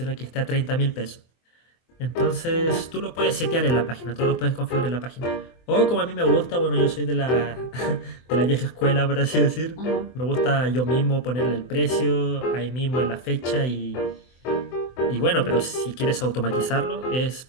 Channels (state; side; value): late; right; 24 ms